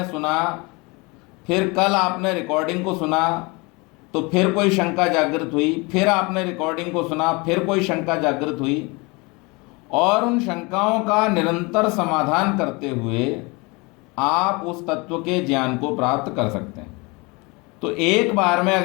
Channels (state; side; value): quieter; right; 26.9 dB